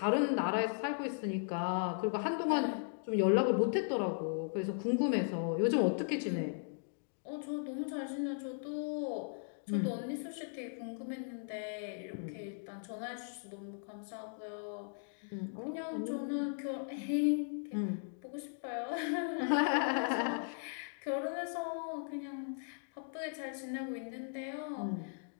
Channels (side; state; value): right; silent; digital silence